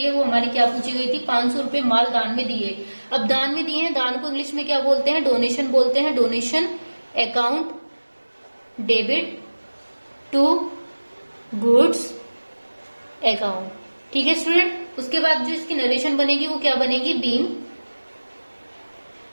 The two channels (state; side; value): inverted; both; correlation -1.00